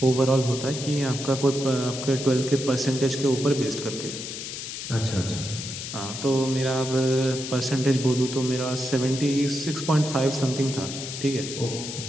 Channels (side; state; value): left; noise; hiss, 7 dB below the sound